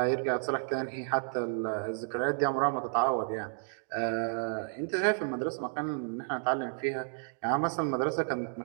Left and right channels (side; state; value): left; silent; digital silence